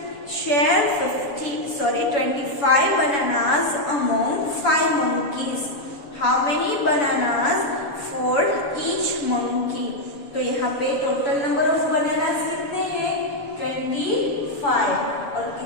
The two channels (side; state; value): right; late; 7.0 ms